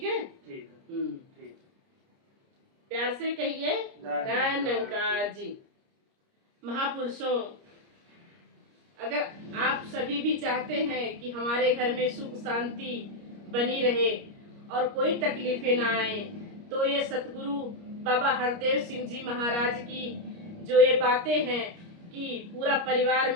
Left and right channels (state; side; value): late; left; 29 ms